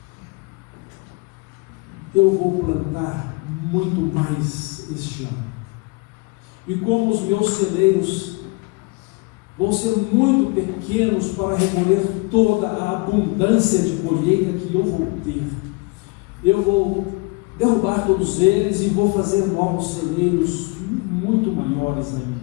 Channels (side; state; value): right; quieter; 27.3 dB